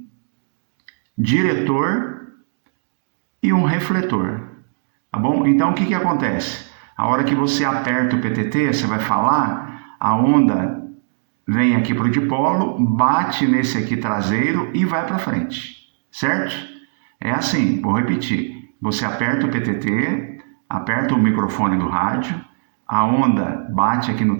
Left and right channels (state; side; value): silent; left; digital silence